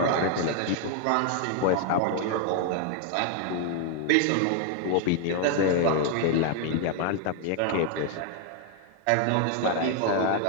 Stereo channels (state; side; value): different; both; correlation 0.00